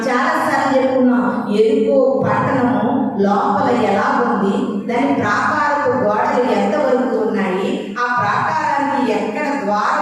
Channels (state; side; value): identical; both; correlation 1.00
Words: చాలాసార్లు చెప్పుకున్నాం. ఎరుకో పట్టణము లోపల ఎలా ఉంది, దాని ప్రాకారపు గోడలు ఎంతవరకు ఉన్నాయి, ఆ ప్రాకారానికి ఎక్కడ